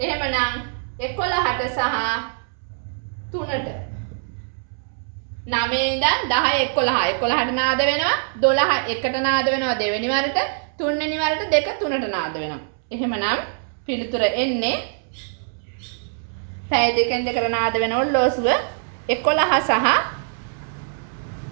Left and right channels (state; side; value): silent; left; 63 dB below the other